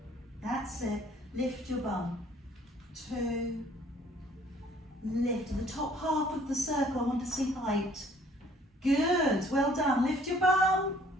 That's it. Lift your bum. 2. Lift. The top half of the circle, I want to see height. Good. Well done. Lift your bum.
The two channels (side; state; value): both; normal; correlation 0.58